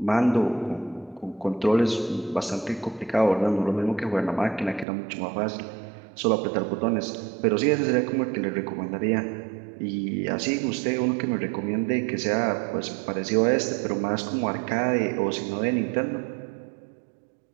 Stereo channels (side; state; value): left; drops out; at 4.9 s